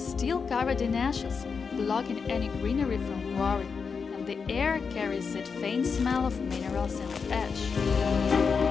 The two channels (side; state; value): right; quieter; 5.5 dB